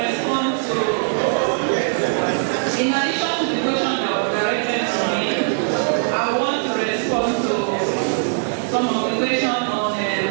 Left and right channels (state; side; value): silent; left; 65 dB below the other